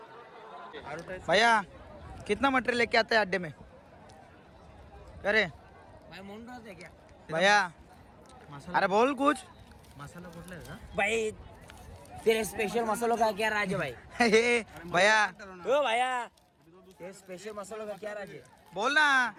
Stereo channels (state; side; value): identical; both; correlation 1.00